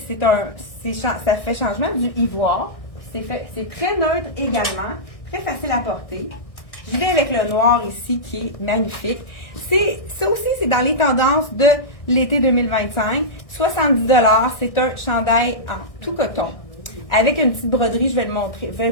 fait changement du ivoire. C'est très neutre également, très facile à porter. Je vais avec le noir ici qui est magnifique. Ça aussi, c'est dans les tendances de l'été 2025. 70 $, c'est un chandail en tout coton. Avec une petite broderie, je vais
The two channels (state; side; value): late; right; 1.6 ms